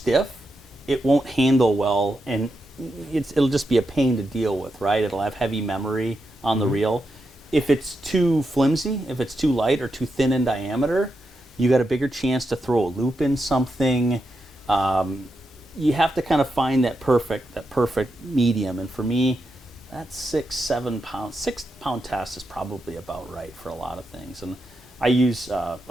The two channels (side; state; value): both; normal; correlation 0.86